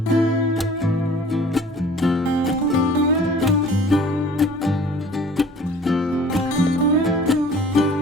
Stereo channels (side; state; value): both; normal; correlation 0.49